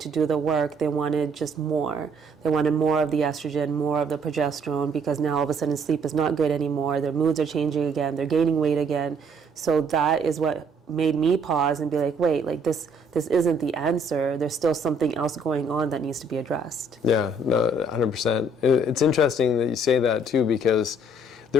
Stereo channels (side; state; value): both; normal; correlation 0.64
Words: do the work, they wanted just more. They wanted more of the estrogen, more of the progesterone, because now all of a sudden sleep is not good anymore, their moods are changing again, they're gaining weight again. So that is what made me pause and be like, wait, like this isn't the answer. There's still something else going on that needs to be addressed. Yeah, no, 100%. It's interesting that you say that too, because